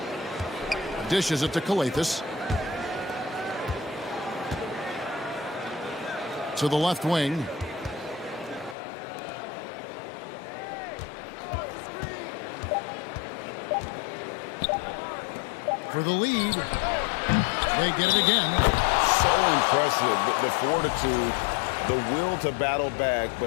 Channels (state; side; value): drops out; right; at 8.8 s